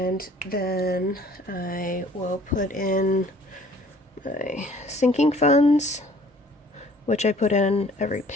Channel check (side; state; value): both; normal; correlation 0.54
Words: then I will put in my sinking funds, which I put in every